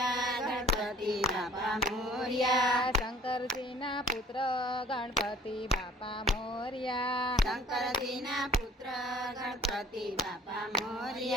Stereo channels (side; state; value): both; normal; correlation 0.52